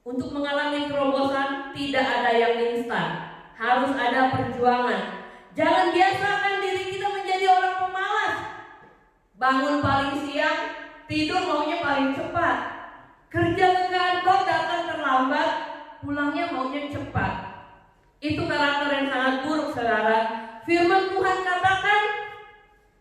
mengalami terobosan tidak ada yang instan, harus ada perjuangan. Jangan biasakan diri kita menjadi orang pemalas. Bangun paling siang, tidur maunya paling cepat. Kerja ke kantor datang terlambat, pulangnya maunya cepat. Itu karakter yang sangat buruk, saudara. Firman Tuhan katakan,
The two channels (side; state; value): both; identical; correlation 1.00